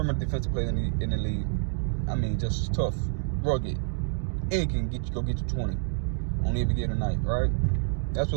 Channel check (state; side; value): silent; left; digital silence